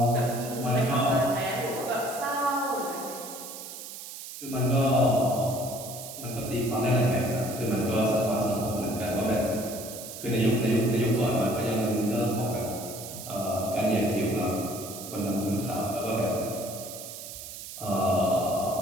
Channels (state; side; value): noise; right; hiss, 11 dB below the sound